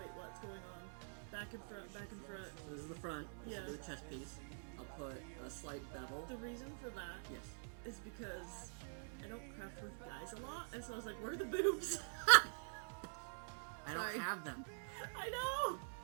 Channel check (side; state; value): left; silent; digital silence